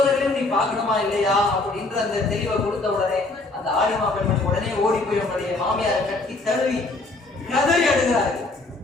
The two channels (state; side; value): quieter; right; 3.1 dB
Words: நீ பார்க்கணுமா இல்லையா அப்படின்ற அந்த தெளிவை கொடுத்த உடனே அந்த ஆலிமா பெண்மணி உடனே ஓடி போய் உன்னுடைய மாமியாரை கட்டி தழுவி கதறி அழுகிறார்கள்.